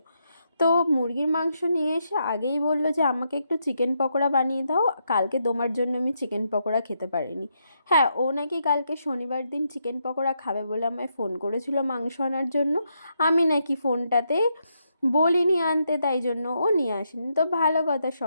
তো মুরগির মাংস নিয়ে এসে আগেই বললো যে আমাকে একটু চিকেন পকোড়া বানিয়ে দাও, কালকে তোমার জন্য আমি চিকেন পকোড়া খেতে পারিনি। হ্যাঁ, ও নাকি কালকে শনিবার দিন চিকেন পকোড়া খাবে বলে আমায় ফোন করেছিল মাংস আনার জন্য। আমি নাকি ফোনটাতে বলিনি আনতে, তাই জন্য ও নিয়ে আসেনি। তো ভালো কথা,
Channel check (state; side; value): inverted; both; correlation -0.80